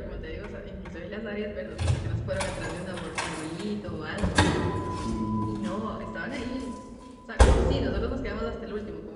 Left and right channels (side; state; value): both; identical; correlation 1.00